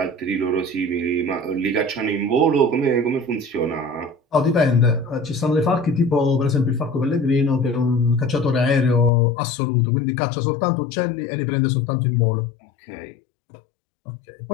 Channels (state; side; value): drops out; right; at 9.1 s